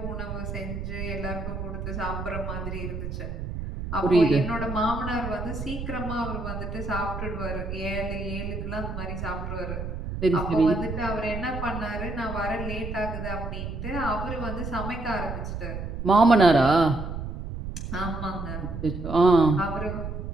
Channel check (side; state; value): right; noise; rumble, 6 dB below the sound